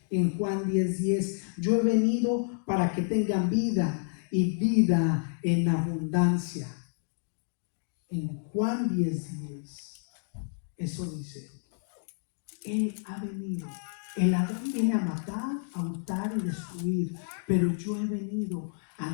En Juan 10:10, yo he venido para que tengan vida y vida en abundancia. En Juan 10:10, eso dice, Él ha venido. El Adán viene a matar, a hurtar y destruir, pero yo he venido a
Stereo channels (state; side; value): silent; right; digital silence